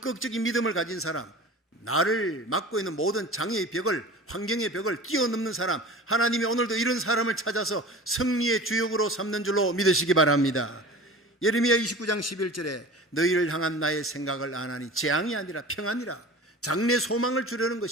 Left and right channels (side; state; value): both; normal; correlation 0.38